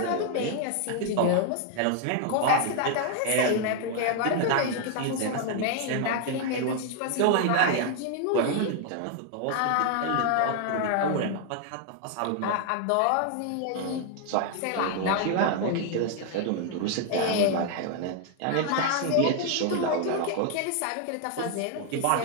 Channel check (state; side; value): different; both; correlation 0.00